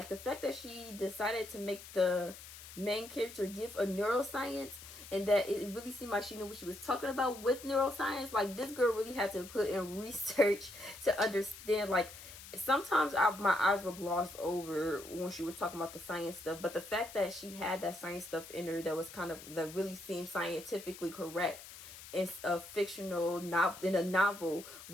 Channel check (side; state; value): left; noise; hiss, 15 dB below the sound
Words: the fact that she decided to make the main character give a neuroscience, and that it really seemed like she knew what she was talking about with neuroscience. Like this girl really had to put in research to understand. Like sometimes my eyes were glossed over when she was talking about the science stuff, but the fact that she had that science stuff in her that was that really seemed scientifically correct in a fictional novel, in a novel,